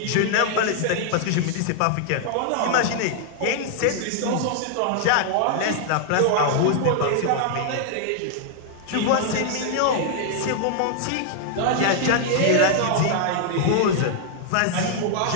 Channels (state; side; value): different; both; correlation 0.00